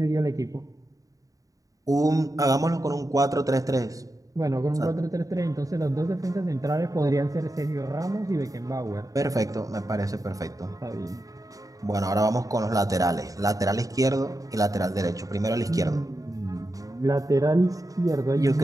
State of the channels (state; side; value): late; left; 0.17 ms